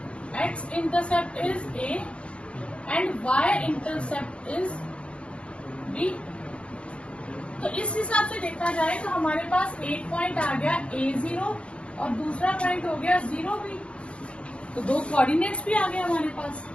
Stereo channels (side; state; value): right; late; 0.059 ms